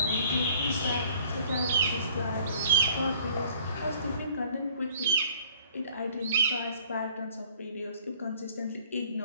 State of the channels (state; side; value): inverted; both; correlation -0.53